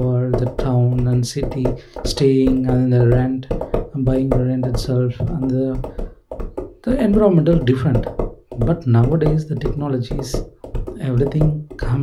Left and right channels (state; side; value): identical; both; correlation 1.00